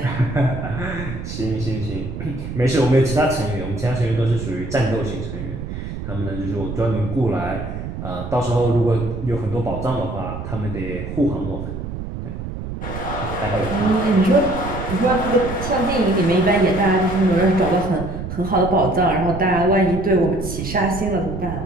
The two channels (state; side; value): noise; right; rumble, 7 dB below the sound